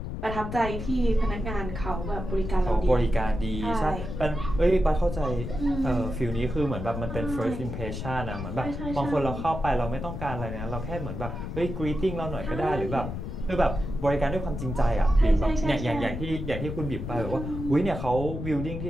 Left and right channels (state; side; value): noise; left; rumble, 6 dB below the sound